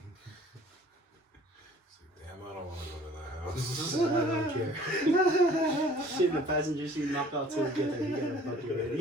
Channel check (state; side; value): normal; both; correlation 0.52